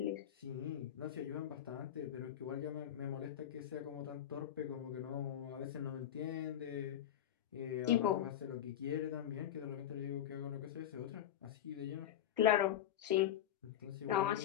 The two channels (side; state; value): right; quieter; 10.9 dB